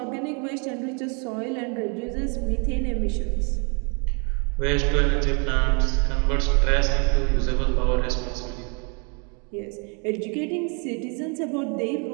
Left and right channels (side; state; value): left; quieter; 36.0 dB